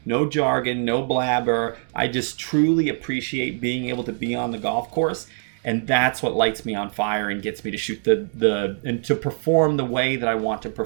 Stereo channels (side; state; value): left; silent; digital silence